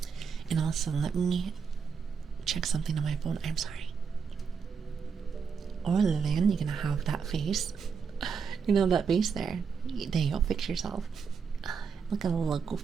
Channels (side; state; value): left; quieter; 6.1 dB